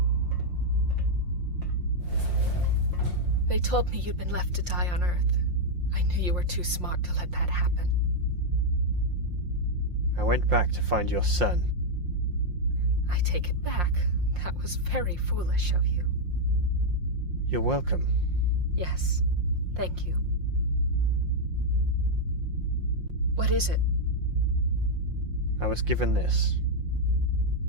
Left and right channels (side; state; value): left; late; 5.7 ms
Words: They told me you'd been left to die on Earth. I knew you were too smart to let that happen. I went back to find your son. I take it back. That was very foolish of you. You're welcome. Yes, thank you. What is it? I was given this.